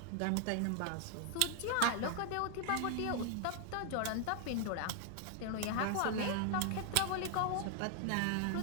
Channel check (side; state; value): both; different; correlation 0.00